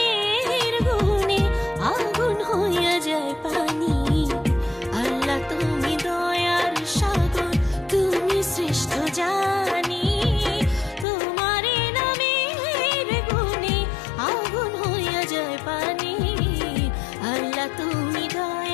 গুণে আগুন হইয়া যায় পানি। আল্লাহ তুমি দয়ার সাগর, তুমি শ্রেষ্ঠ জানি। তোমার নামের গুণে আগুন হইয়া যায় পানি। আল্লাহ তুমি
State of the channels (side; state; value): right; drops out; at 11.1 s